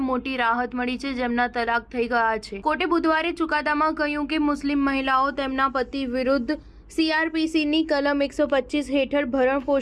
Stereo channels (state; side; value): identical; both; correlation 1.00